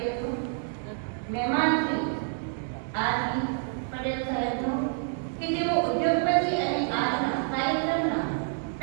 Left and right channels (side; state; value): left; silent; digital silence